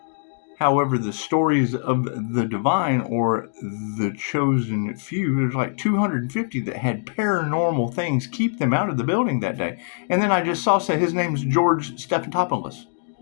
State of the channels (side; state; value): right; silent; digital silence